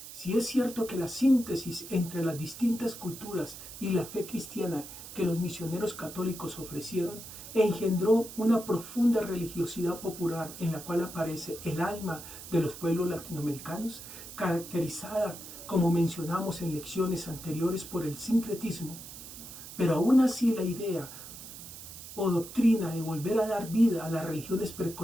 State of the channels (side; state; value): right; noise; hiss, 13 dB below the sound